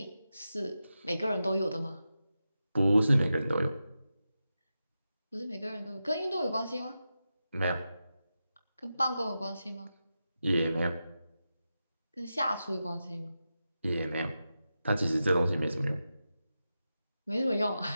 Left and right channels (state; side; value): inverted; both; correlation -0.91